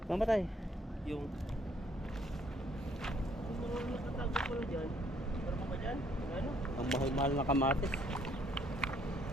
Mamatay. Yung meron nakatago pala dyan. Meron pa ba dyan? Ano? Ang mahal-mahal na kamatis.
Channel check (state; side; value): normal; both; correlation 0.66